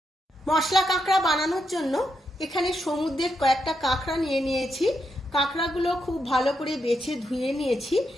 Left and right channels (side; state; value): both; normal; correlation 0.82